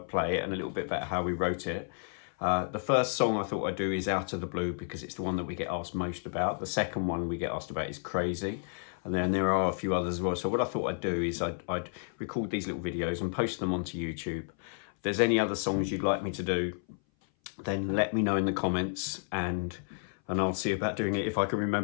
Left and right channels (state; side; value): silent; right; 57 dB below the other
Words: it and a little bit about how we wrote it. The first song I thought I'd do is Out of the Blue because it's the one that we get asked most about. The second one we get asked about is Crazy. And then there are a few others as well. So what I thought I'd do is I'd record these little videos and post them onto YouTube. If there's any other songs you'd like me to do, then let me know in the comments and I'll see about doing it if I can